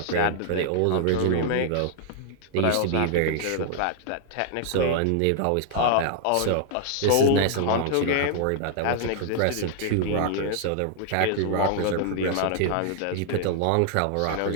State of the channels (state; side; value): different; both; correlation -0.01